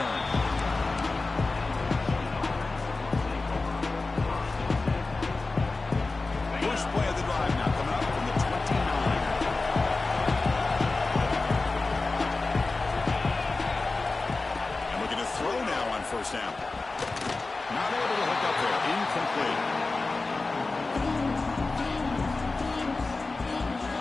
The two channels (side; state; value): right; quieter; 3.6 dB